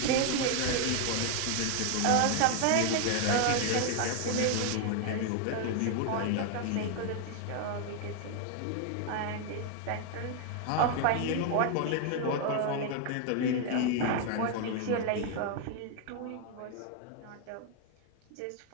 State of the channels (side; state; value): both; different; correlation 0.00